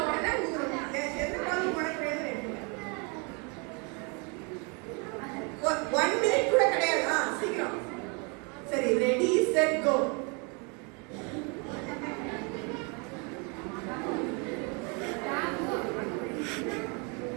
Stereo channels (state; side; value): quieter; left; 33.2 dB